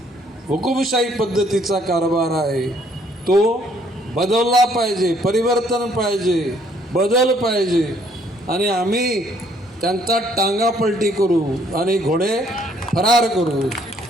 हुकुमशाही पद्धतीचा कारभार आहे तो बदलला पाहिजे, परिवर्तन पाहिजे, बदल पाहिजे आणि आम्ही त्यांचा टांगा पलटी करू आणि घोडे फरार करू.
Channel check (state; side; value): normal; both; correlation 0.65